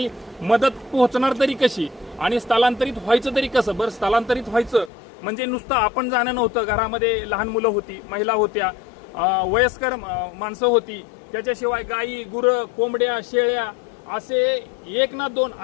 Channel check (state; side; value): drops out; right; at 4.9 s